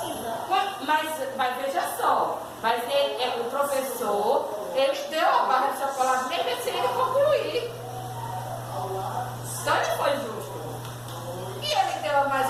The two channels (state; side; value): identical; both; correlation 1.00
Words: Mas veja só, o professor, ele deu a barra de chocolate nem se ele concluir. Então ele foi justo. E ele deu